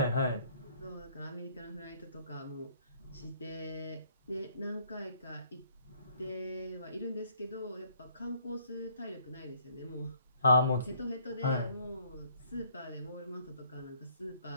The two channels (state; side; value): inverted; both; correlation -0.63